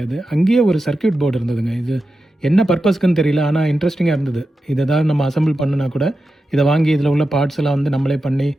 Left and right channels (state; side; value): normal; both; correlation 0.91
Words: அங்கேயே ஒரு சர்க்கியூட் போர்டு இருந்ததுங்க. இது என்ன பர்பஸ்க்குன்னு தெரியல, ஆனால் இன்ட்ரெஸ்டிங்காக இருந்தது. இது ஏதாவது நம்ம அசம்பிள் பண்ணுனா கூட இதை வாங்கி இதில் உள்ள பார்ட்ஸ் எல்லாம் வந்து நம்மளே பண்ணி